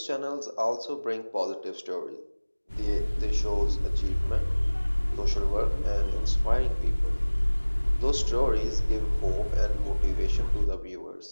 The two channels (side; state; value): both; inverted; correlation -1.00